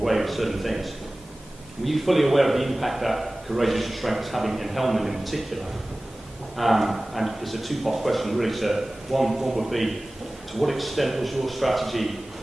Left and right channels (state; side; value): normal; both; correlation 0.98